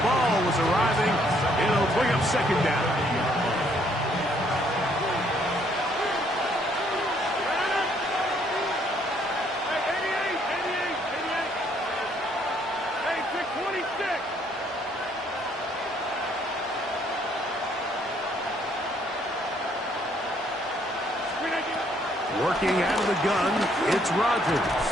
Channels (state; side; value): normal; both; correlation 0.67